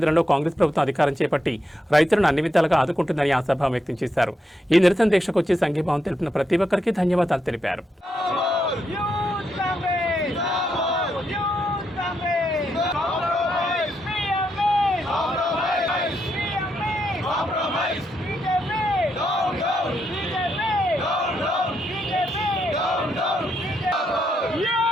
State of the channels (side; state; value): both; normal; correlation 0.81